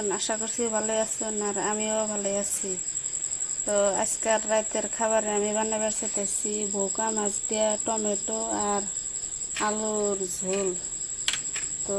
আশা করছি ভালো আছেন, আর আমিও ভালো আছি। তো আজকের রাতের খাবারে আমি বানাবার চেয়েছি ভোকা মাছ দিয়ে টমেটো আর আলুর ঝোল। তো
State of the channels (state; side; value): identical; both; correlation 1.00